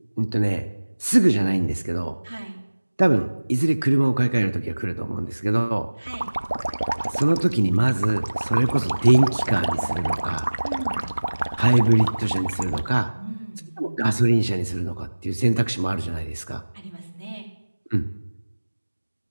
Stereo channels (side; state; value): both; inverted; correlation -1.00